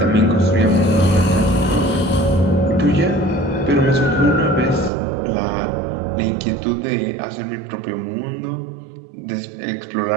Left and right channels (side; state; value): left; drops out; at 4.9 s